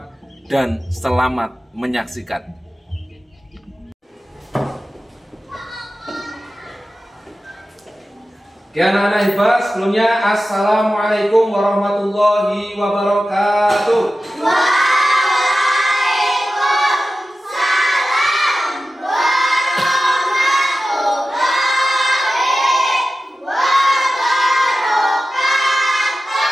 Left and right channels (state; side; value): normal; both; correlation 0.94